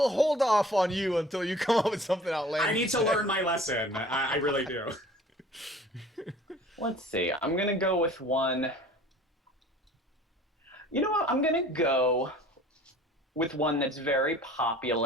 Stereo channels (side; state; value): both; normal; correlation 0.48